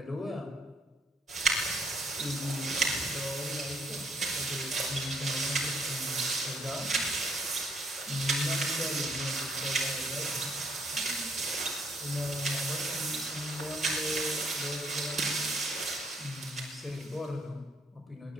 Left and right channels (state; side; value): normal; both; correlation 0.68